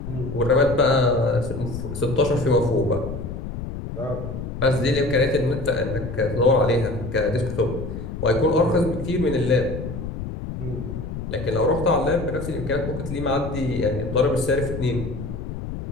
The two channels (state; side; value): noise; left; rumble, 7 dB below the sound